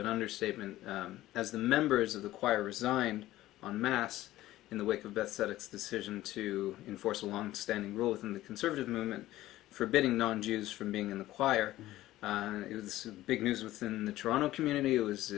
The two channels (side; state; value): right; quieter; 15.5 dB